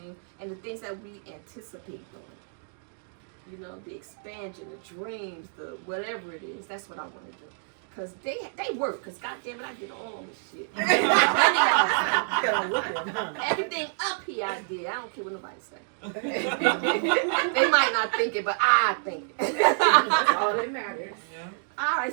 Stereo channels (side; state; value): left; silent; digital silence